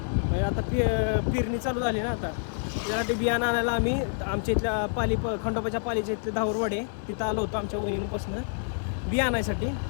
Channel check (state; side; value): silent; right; digital silence